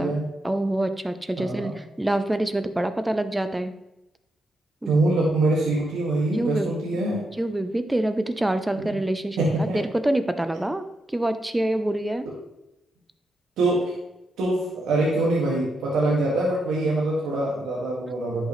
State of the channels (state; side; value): normal; both; correlation 0.82